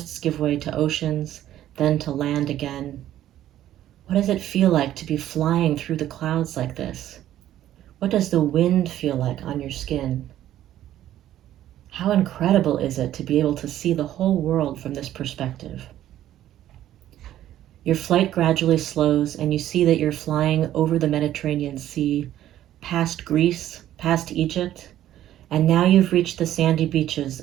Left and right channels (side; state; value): left; quieter; 12.6 dB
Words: give way to oceans, then to land again. What does it feel like to be flying through the clouds like this? What does the wind feel like on your skin? How incredible is it to be able to see the whole world from this perspective? Your flight gradually slows, and you see that you're flying over the Mediterranean Sea, past Greece, past Egypt, and now you've reached the sandy beaches